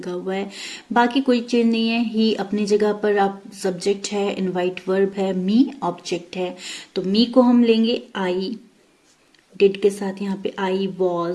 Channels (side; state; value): both; identical; correlation 1.00